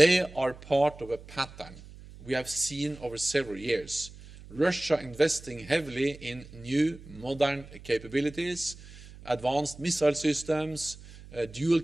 are part of a pattern we have seen over several years. Russia investing heavily in new modern capabilities, advanced missile systems,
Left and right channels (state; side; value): noise; right; hum, 18 dB below the sound